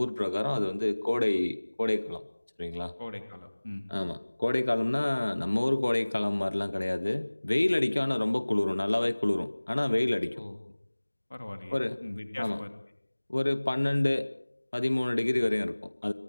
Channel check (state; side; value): inverted; both; correlation -1.00